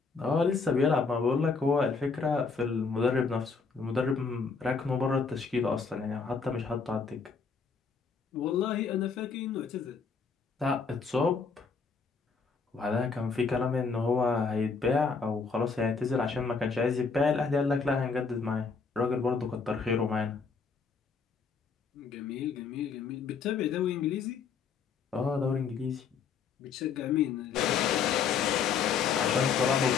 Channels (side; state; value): right; quieter; 5.3 dB